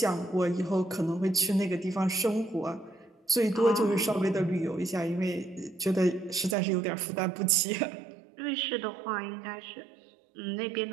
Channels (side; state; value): left; drops out; at 6.6 s